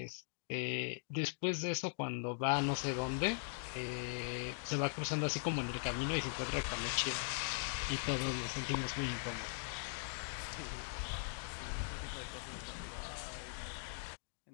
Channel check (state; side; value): silent; right; digital silence